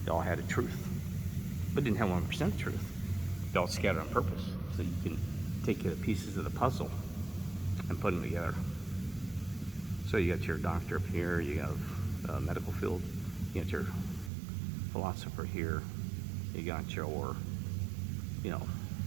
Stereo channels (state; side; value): drops out; left; at 14.3 s